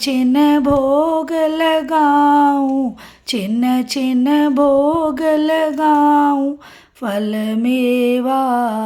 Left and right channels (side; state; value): both; identical; correlation 1.00